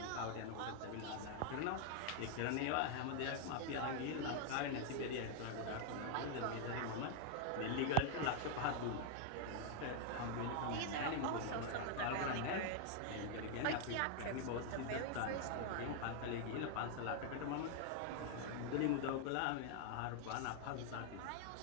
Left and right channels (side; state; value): both; different; correlation 0.00